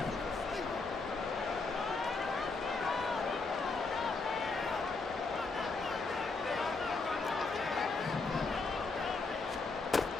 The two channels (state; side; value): quieter; right; 3.9 dB